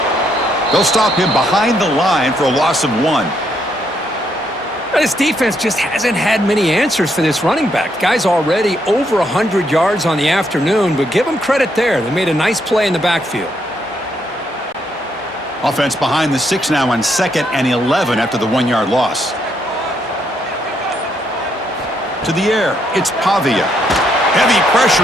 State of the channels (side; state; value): both; normal; correlation 0.75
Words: They'll stop him behind the line for a loss of 1. This defense just hasn't had many answers for this running back. Guy's already over 100 yards on the afternoon, but give him credit there. They made a nice play in the backfield. Offense behind the 6 now on 2nd and 11 after the 1-yard loss. To the air, it's Pavia. Heavy